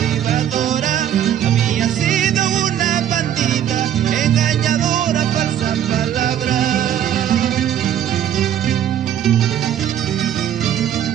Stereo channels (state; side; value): quieter; left; 10.4 dB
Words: Había sido una bandida, engañadora, falsa palabra.